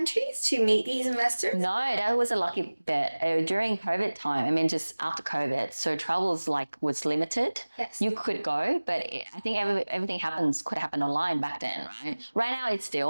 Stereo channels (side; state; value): both; inverted; correlation -1.00